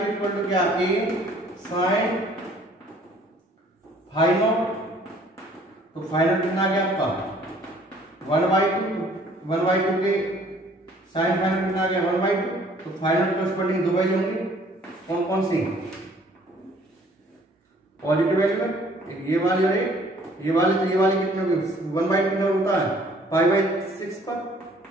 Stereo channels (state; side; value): normal; both; correlation 0.57